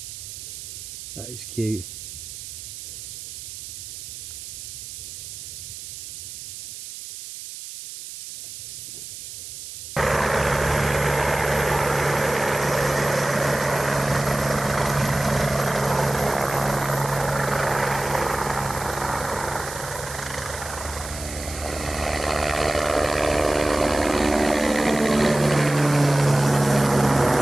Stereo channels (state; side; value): noise; right; hiss, 11 dB below the sound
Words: That is cute.